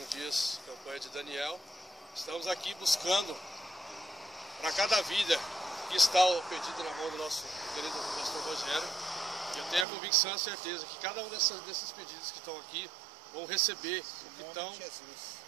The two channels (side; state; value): left; drops out; at 9.9 s